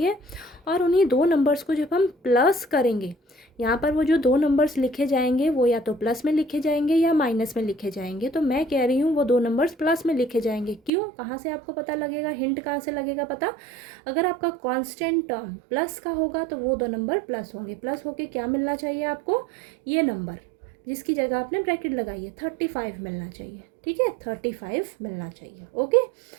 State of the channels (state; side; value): drops out; left; at 10.9 s